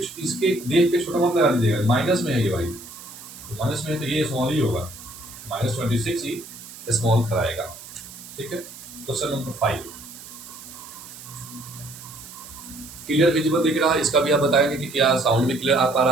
इसके देख के छोटा मत लगा दीजिएगा, माइनस में है ये भाई, तो माइनस में है तो ये स्मॉल ही होगा, -26 ही स्मॉल कराएगा, ठीक है। क्वेश्चन नंबर 5, क्लियर विजिबल दिख रहा है? इसका भी आप बताएंगे कि क्या साउंड भी क्लियर आ पा रहा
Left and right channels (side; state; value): right; noise; hiss, 16 dB below the sound